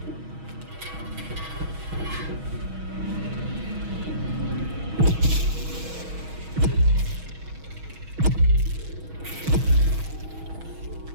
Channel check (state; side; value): late; left; 6.2 ms